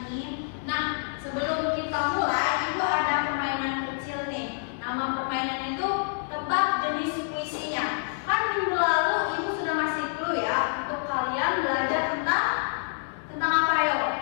ini. Nah, sebelum kita mulai, Ibu ada permainan kecil nih. Nama permainannya itu tebak jenis puisinya. Kan minggu lalu Ibu sudah ngasih clue ya untuk kalian belajar tentang apa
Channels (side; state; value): right; silent; digital silence